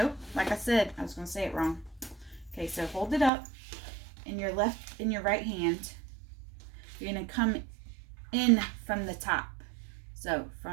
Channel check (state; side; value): drops out; left; at 3.3 s